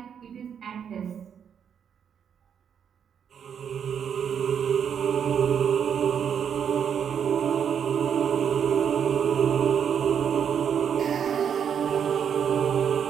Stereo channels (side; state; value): left; quieter; 7.9 dB